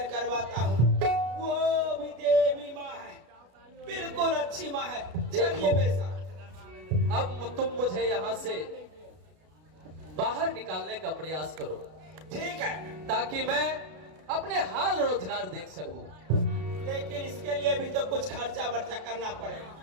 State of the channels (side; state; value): left; late; 33 ms